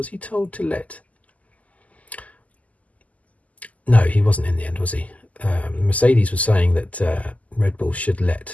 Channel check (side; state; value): right; late; 0.073 ms